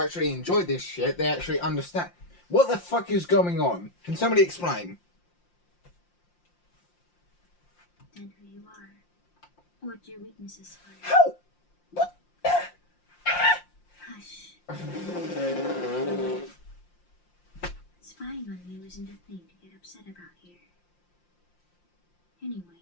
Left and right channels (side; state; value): right; late; 5.7 ms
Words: enjoy this shit, they actually understand. What the fuck is going on? Can somebody explain? And who you are. What your weaknesses are. How? What? Hush. Spying on you isn't a thing to get upset about here.